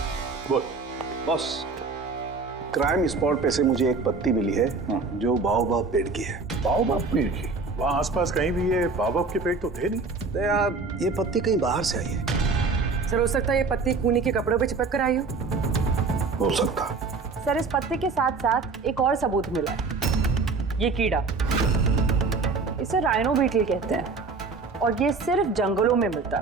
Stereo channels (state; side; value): quieter; left; 4.2 dB